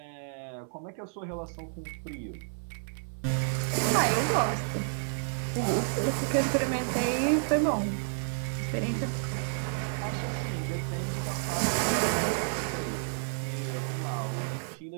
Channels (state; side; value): silent; left; 57 dB below the other